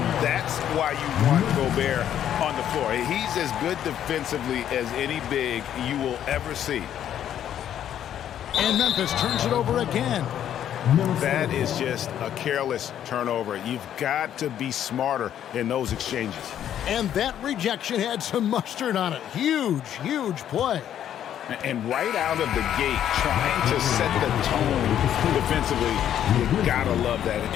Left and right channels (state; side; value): quieter; right; 10.4 dB